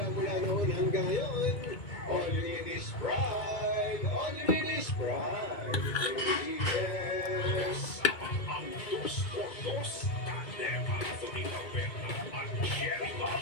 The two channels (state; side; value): late; right; 2.2 ms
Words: mula noon hanggang ngayon, all you need is Pride. All you need is Pride. Yes! Ang dos por dos, tandem, Anthony Alberta, at Jerry Bob,